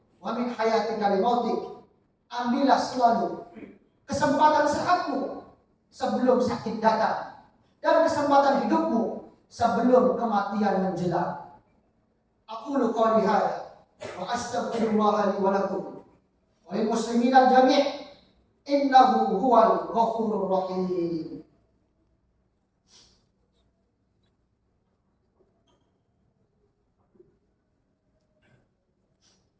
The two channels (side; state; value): both; identical; correlation 1.00